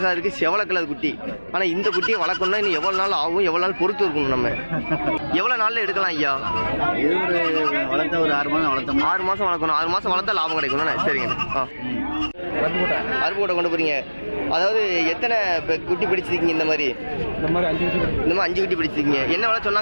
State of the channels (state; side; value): inverted; both; correlation -1.00